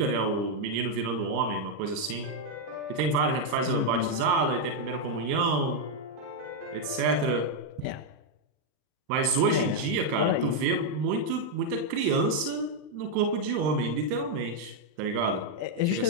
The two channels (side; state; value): left; late; 39 ms